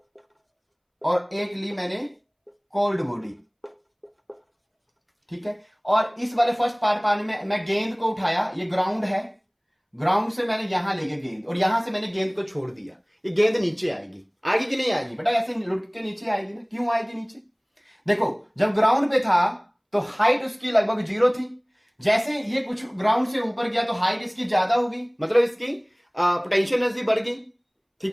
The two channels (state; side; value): identical; both; correlation 1.00